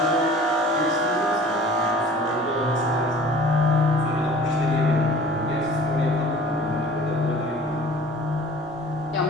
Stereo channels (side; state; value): both; normal; correlation 0.46